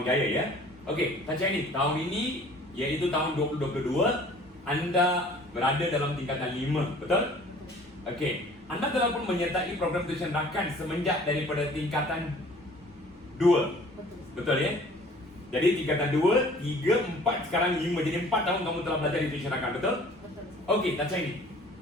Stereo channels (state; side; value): normal; both; correlation 0.51